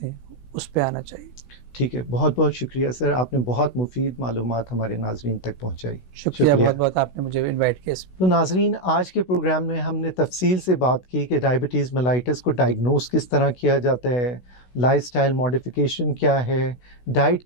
हैं, उस पर आना चाहिए। ठीक है। बहुत बहुत शुक्रिया सर, आपने बहुत मुफीद मालूमात हमारे नाजरीन तक पहुँचाई। शुक्रिया बहुत बहुत, आपने मुझे इन्वाइट किया। तो नाजरीन, आज के प्रोग्राम में हमने तफसील से बात की कि डायबिटीज़ मेलाइटिस को डायग्नोस किस तरह किया जाता है, लाइफस्टाइल मॉडिफिकेशन क्या है, डाइट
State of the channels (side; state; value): right; late; 16 ms